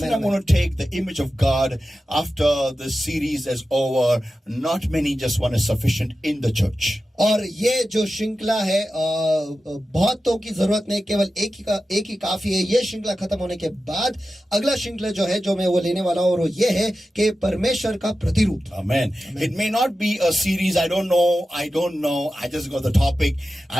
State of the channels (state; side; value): normal; both; correlation 0.93